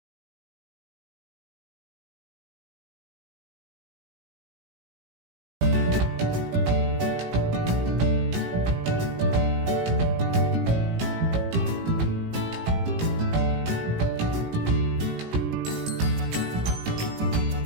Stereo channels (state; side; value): late; left; 18 ms